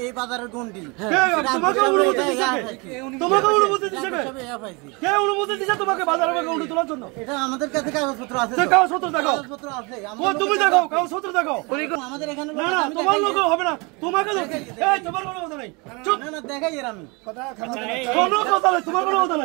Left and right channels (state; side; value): quieter; left; 28.7 dB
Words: এই বাজারের গন্ডি। তোমাকে অনুমতি দিছে কে? তোমাকে অনুমতি দিছে কে? কে অনুমতি দিছে তোমাকে বাজারে গন্ডি তোলার জন্য? এটা আমাদের কাছে কাগজপত্র আছে। কাগজপত্র দেখাও। কাগজপত্র আছে। ও তুমি দেখাও, কাগজপত্র দেখাও। আমাদের এখানে না না, তোমার লোক হবে না। তোমাকে এই তোমার কোনো কথা নাই। চুপ। না না দেখাই এর আমি। কোনো কথা নাই, তোমার কোনো কথা